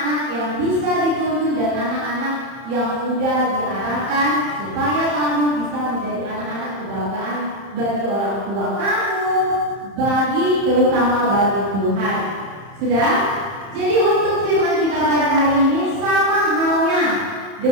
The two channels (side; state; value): left; late; 30 ms